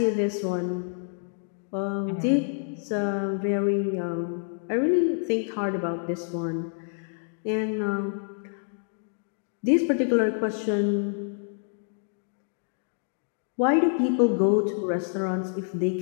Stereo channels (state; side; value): silent; right; digital silence